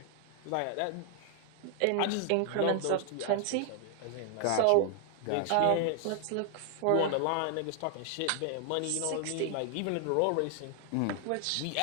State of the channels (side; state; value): both; different; correlation 0.00